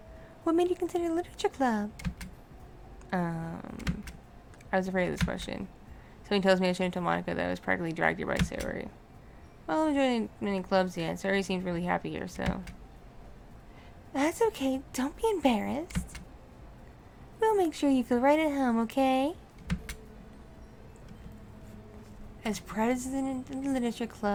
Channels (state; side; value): identical; both; correlation 1.00